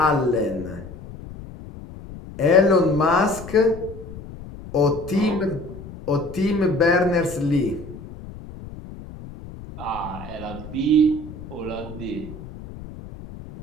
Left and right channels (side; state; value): left; noise; rumble, 14 dB below the sound